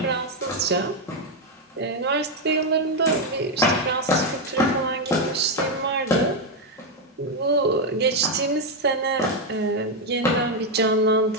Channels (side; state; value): both; normal; correlation 0.04